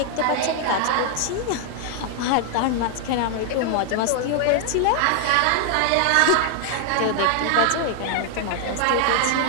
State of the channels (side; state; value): both; different; correlation 0.00